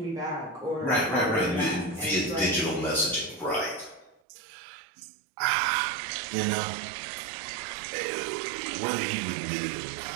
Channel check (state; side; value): drops out; left; at 4.2 s